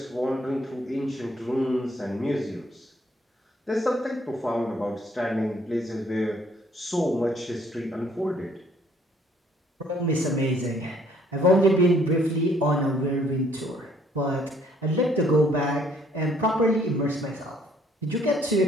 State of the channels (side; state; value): both; normal; correlation 0.63